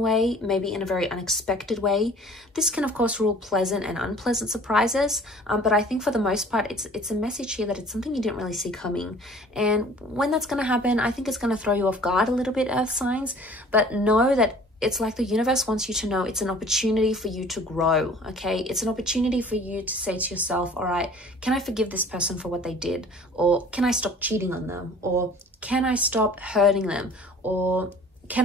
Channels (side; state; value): both; normal; correlation 0.49